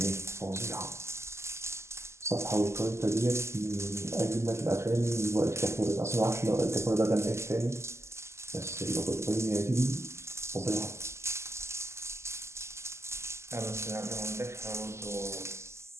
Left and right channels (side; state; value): left; late; 0.13 ms